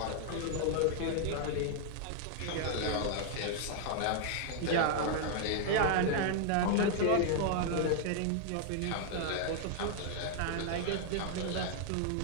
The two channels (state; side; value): different; both; correlation 0.00